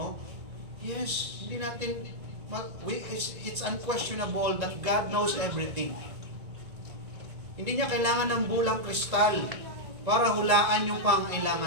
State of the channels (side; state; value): left; late; 1.9 ms